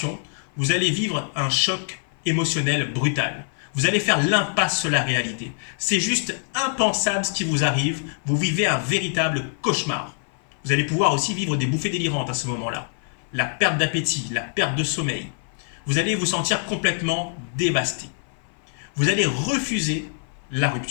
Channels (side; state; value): right; silent; 56 dB below the other